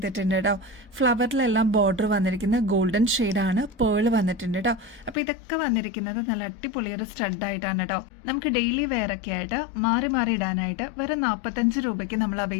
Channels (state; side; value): drops out; right; at 5.2 s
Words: കേട്ടോ. ഫ്ലവറിലെല്ലാം ബോർഡർ വന്നിരിക്കുന്നത് ഗോൾഡൻ ഷെയ്ഡാണ്. പേൾ വന്നിട്ടുണ്ട് കേട്ടോ. അപ്പോൾ ഇതൊക്കെ വന്നിരിക്കുന്നത് നല്ല അടിപൊളി ഒരു സ്റ്റഡ് ആയിട്ടാണ് കേട്ടോ. നമുക്ക് ഡെയിലി വെയർ ഒക്കെ ആയിട്ട് മാറി മാറി ഇടാനായിട്ട് വെറും 45 രൂപയ്ക്ക് നമ്മൾ